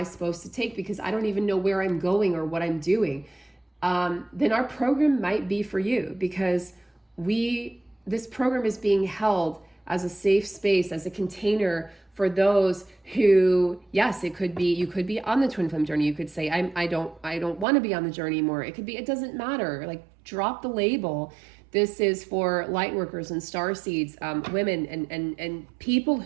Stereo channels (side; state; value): left; drops out; at 17.7 s